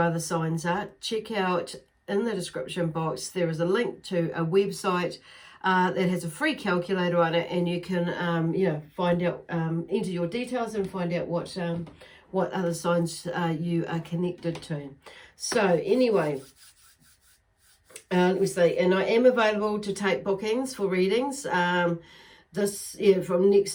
other signs are, check out in the description box. There is a link to a website that has a free calculator on it, and you can find out, enter your details and find out what other signs you are connected to. So anyway, let me see, and I am available to take bookings for readings from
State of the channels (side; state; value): both; identical; correlation 1.00